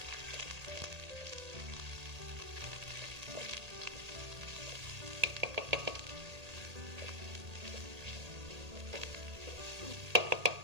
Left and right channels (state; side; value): late; left; 1.8 ms